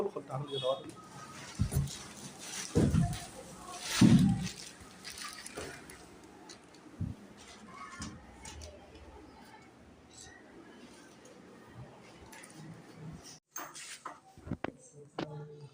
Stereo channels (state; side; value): identical; both; correlation 1.00